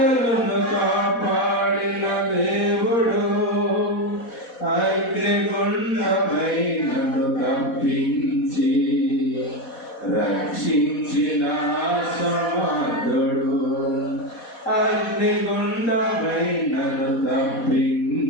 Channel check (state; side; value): late; right; 4.1 ms